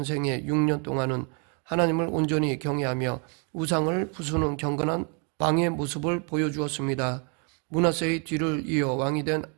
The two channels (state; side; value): quieter; left; 35.8 dB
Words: 생애 6년 동안은 하나님을 온전히 경외하며 우상을 부수는 경건한 왕의 모습을 보여주었습니다. 므낫세의 뒤를 이어 왕이 된